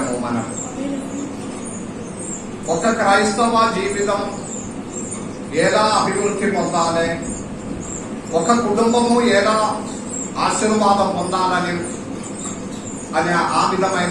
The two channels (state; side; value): identical; both; correlation 1.00